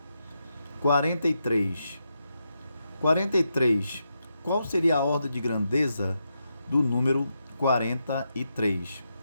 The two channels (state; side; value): inverted; both; correlation -0.84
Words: 43. 43. Qual seria a ordem de grandeza do número 43?